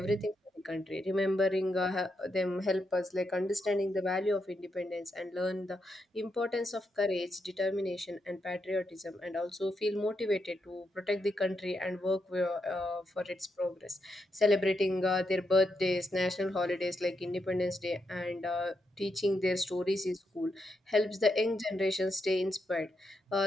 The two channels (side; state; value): both; normal; correlation 0.82